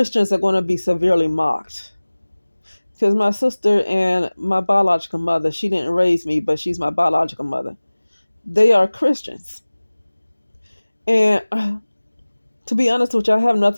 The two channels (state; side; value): inverted; both; correlation -1.00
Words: are going to be severely mocked. Because my sister and my biological mother, she didn't raise me, but she's my biological mother. They are Christians. And to be honest with you, I have